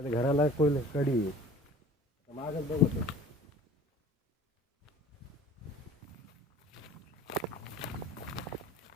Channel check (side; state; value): both; normal; correlation 0.45